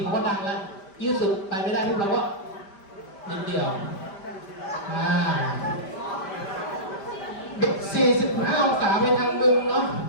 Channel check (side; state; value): right; late; 5.1 ms